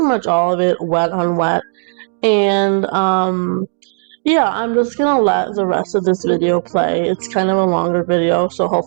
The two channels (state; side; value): silent; left; digital silence